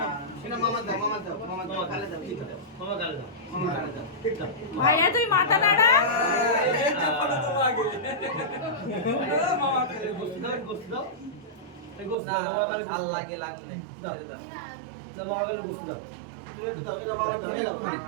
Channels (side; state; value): left; drops out; at 12.2 s